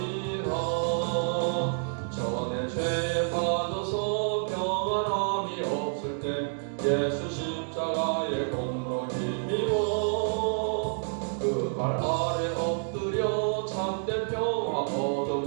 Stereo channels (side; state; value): left; silent; digital silence